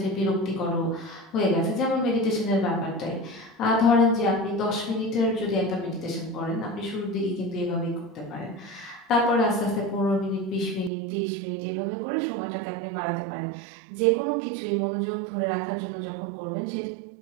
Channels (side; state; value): left; drops out; at 10.9 s